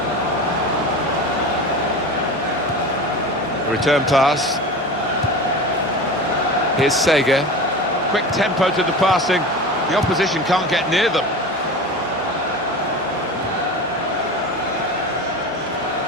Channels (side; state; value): both; normal; correlation 0.30